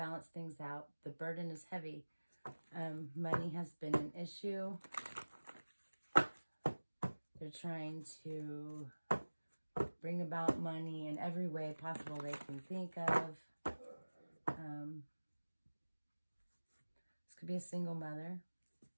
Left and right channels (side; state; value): both; inverted; correlation -1.00